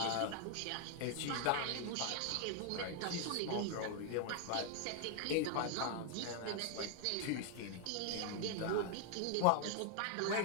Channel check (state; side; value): different; both; correlation 0.00